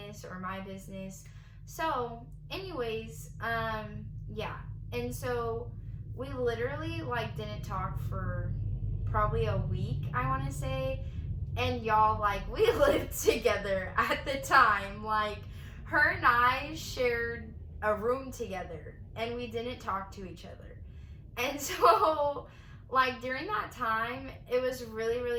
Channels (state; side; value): identical; both; correlation 1.00